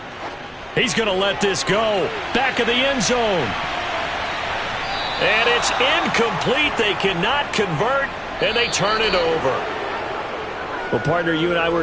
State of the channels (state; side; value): identical; both; correlation 1.00